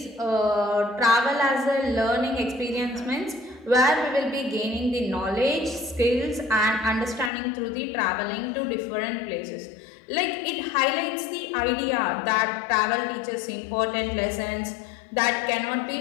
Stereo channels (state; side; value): drops out; right; at 7.3 s